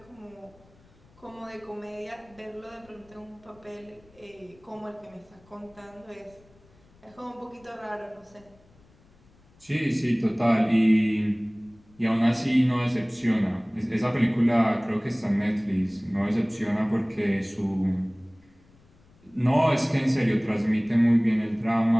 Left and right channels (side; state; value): left; noise; rumble, 29 dB below the sound